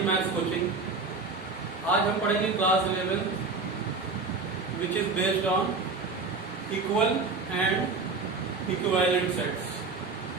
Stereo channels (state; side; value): quieter; left; 4.1 dB